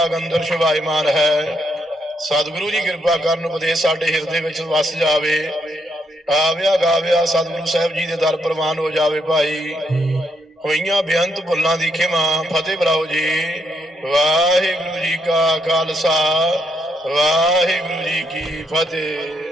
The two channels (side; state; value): both; normal; correlation 0.77